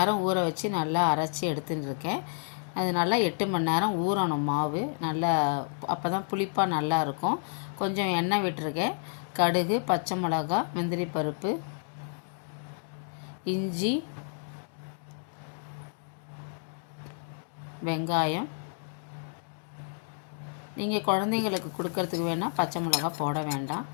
ஊற வச்சு நல்லா அரைச்சி எடுத்துன்னு இருக்கேன். அது நல்லா 8 மணி நேரம் ஊறணும் மாவு. நல்லா அப்போ தான் புளிப்பாக நல்லா இருக்கும். கொஞ்சம் எண்ணெய் விட்டுருக்கேன். கடுகு, பச்சை மிளகா, முந்திரி பருப்பு, இஞ்சி, வெங்காயம். நீங்கள் குழந்தைங்களுக்கு கொடுக்கறதுக்கு வேணால் பச்சை மிளகா போட வேண்டாம்.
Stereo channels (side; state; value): right; silent; 58 dB below the other